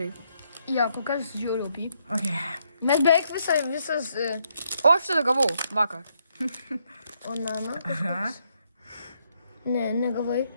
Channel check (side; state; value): both; inverted; correlation -0.76